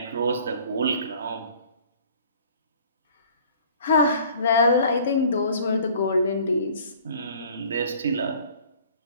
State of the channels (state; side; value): inverted; both; correlation -0.51